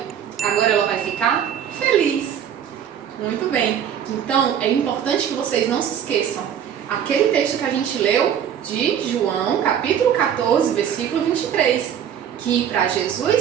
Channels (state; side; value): quieter; left; 9.0 dB